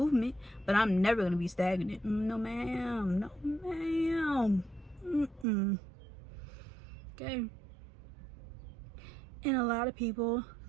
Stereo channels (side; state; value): left; drops out; at 5.5 s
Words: but I'm never gonna be stagnant. No ma'am. Okay. And a lot of people